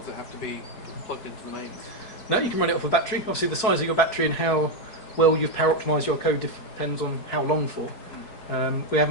it have to be plugged into the mains? No, you can run it off a battery. Obviously, the size of your battery and how well you've power optimised your code depends on how long for. We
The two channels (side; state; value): right; late; 4.8 ms